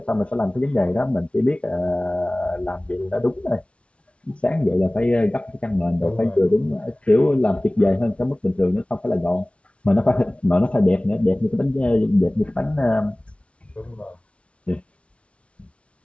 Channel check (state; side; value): late; right; 0.061 ms